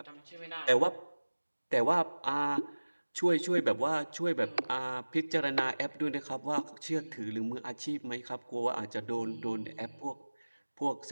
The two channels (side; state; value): both; inverted; correlation -1.00